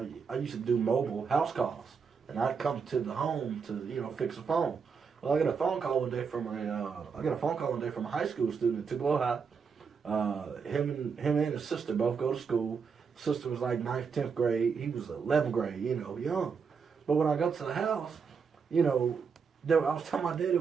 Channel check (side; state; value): left; quieter; 5.9 dB